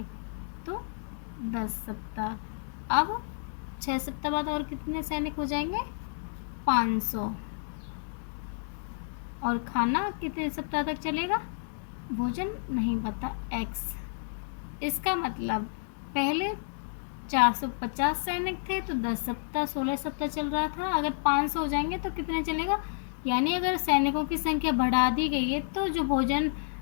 तो 10 सप्ताह। अब 6 सप्ताह बाद और कितने सैनिक हो जाएंगे, 500। और खाना कितने सप्ताह तक चलेगा, भोजन नहीं पता, x। इसका मतलब पहले 450 सैनिक थे तो 10 सप्ताह 16 सप्ताह चल रहा था, अगर 500 हो जाएंगे तो कितने चलेगा, यानी अगर सैनिकों की संख्या बढ़ा दी गई है तो जो भोजन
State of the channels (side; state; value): right; silent; digital silence